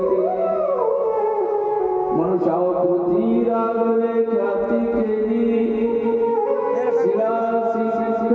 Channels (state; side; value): identical; both; correlation 1.00